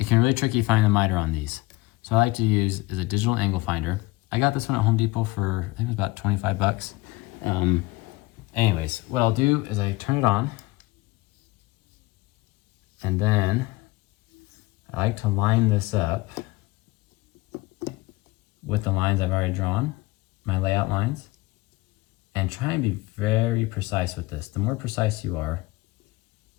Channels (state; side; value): quieter; right; 20.7 dB